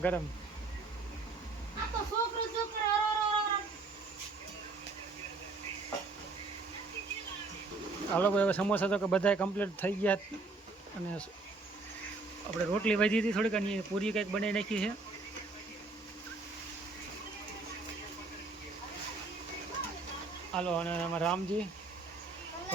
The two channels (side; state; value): left; quieter; 3.7 dB